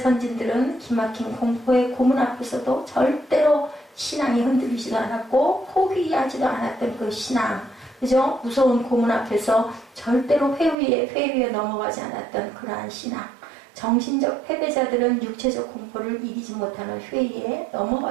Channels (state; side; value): drops out; left; at 10.8 s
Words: 기막힌 공포의 고문 앞에서도 절대로 신앙이 흔들리지도 않았고 포기하지도 않았던 그 신앙, 그죠? 무서운 고문 앞에서 절대로 회의에 넘어가지 않았던 그러한 신앙. 정신적 패배자들은 육체적 공포를 이기지 못하는 회의에